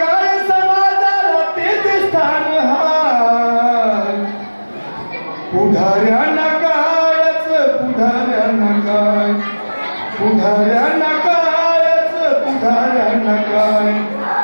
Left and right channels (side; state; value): both; inverted; correlation -1.00